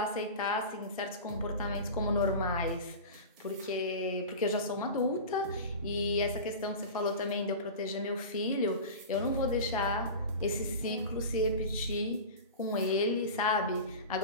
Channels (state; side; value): inverted; both; correlation -0.30